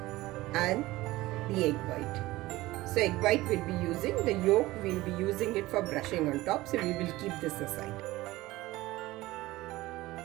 and the egg white. So egg white we'll be using, the yolk we'll be using it for brushing on top, so we will keep this aside.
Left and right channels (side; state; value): left; quieter; 18.4 dB